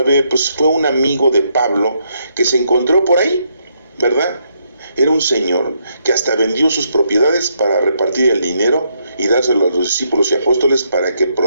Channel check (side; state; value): both; inverted; correlation -0.75